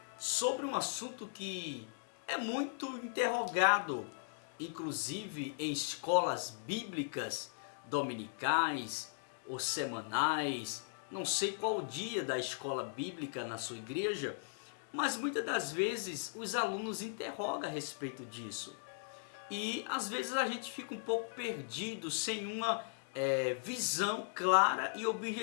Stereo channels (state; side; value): silent; right; digital silence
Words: sobre um assunto que é muito interrogado, inclusive em escolas bíblicas dominicais ou semanais. Não sei qual o dia da escola bíblica na sua igreja, mas muitas das vezes os alunos interrogam a respeito disso. E às vezes a gente fica um pouco perdido, sem uma visão clara e